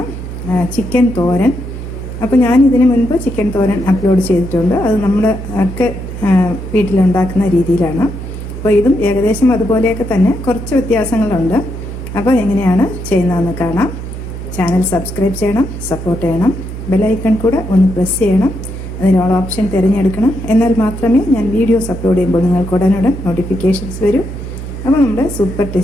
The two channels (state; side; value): noise; right; hum, 8 dB below the sound